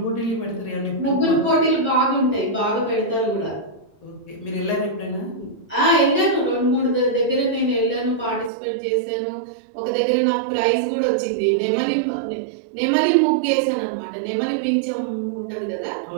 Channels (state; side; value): drops out; left; at 8.5 s